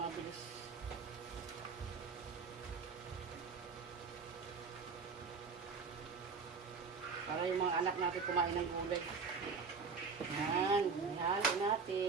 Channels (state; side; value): quieter; left; 5.0 dB